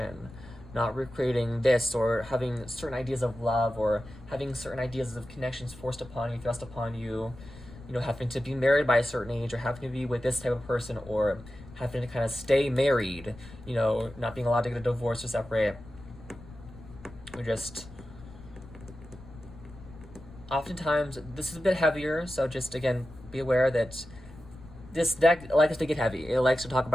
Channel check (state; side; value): noise; left; rumble, 18 dB below the sound